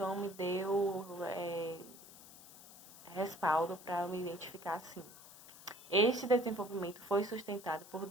me deu respaldo para me identificar assim. Este desenvolvimento foi sustentado por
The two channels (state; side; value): noise; left; hiss, 18 dB below the sound